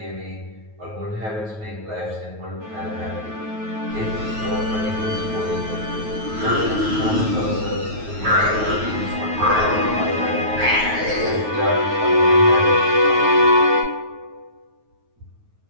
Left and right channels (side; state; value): left; late; 9.3 ms